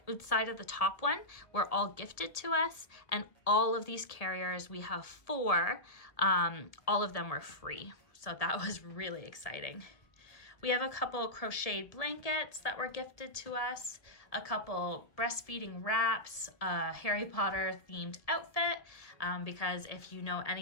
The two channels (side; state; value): right; late; 1.7 ms